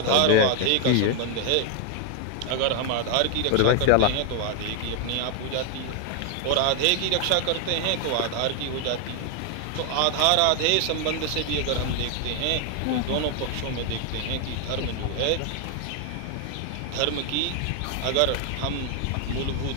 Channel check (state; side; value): different; both; correlation 0.00